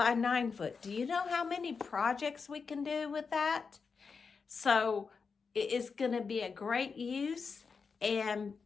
9 foot. Do you know how many projects we can do with that? So it is going to be a great use and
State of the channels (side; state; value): right; quieter; 5.2 dB